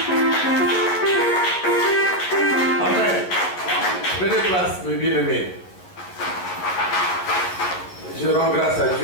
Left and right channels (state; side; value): late; right; 11 ms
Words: Amen. Prenez place, mes bien-aimés. Je rends grâce à